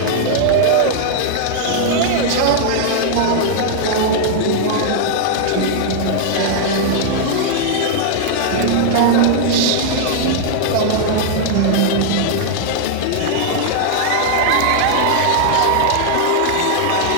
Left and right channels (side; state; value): both; different; correlation -0.01